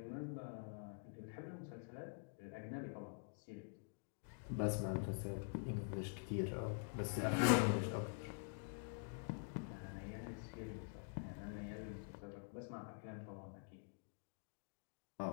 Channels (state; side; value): silent; right; digital silence